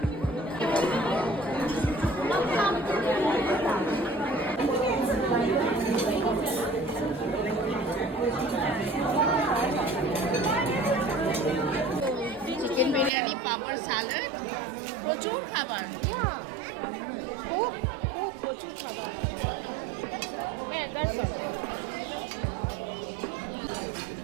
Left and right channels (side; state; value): left; drops out; at 13.1 s